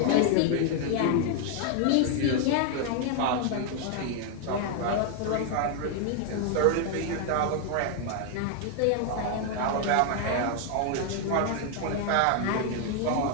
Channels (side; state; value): both; different; correlation 0.00